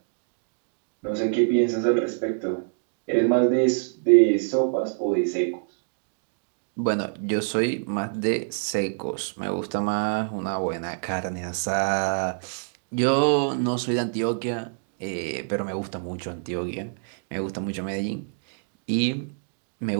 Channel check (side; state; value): left; silent; digital silence